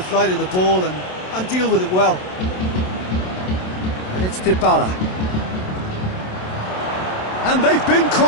flight of the ball and deal with it well. And it's Dybala. And they've been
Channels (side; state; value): right; late; 27 ms